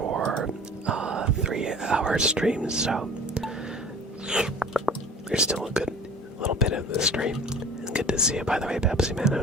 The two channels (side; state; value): both; normal; correlation 0.43